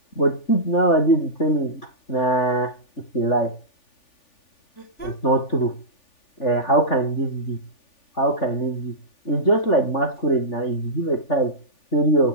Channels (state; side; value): late; right; 3.4 ms